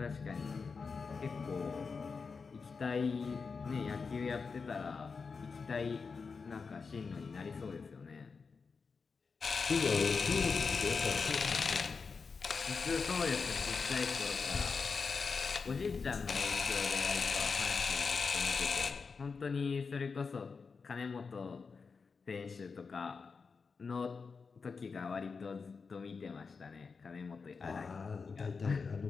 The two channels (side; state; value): right; quieter; 5.0 dB